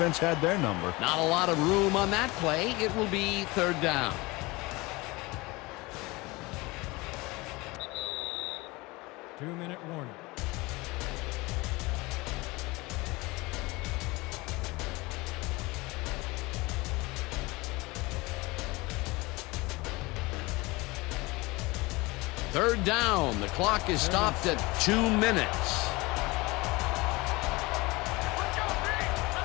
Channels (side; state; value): right; quieter; 23.1 dB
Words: had their number. Not a lot of room on that play. It will be third down. Two-minute warning. Third down. The clock is stopped at 2 minutes.